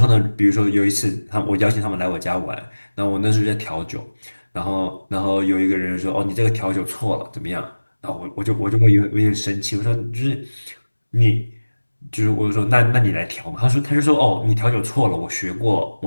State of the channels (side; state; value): both; inverted; correlation -1.00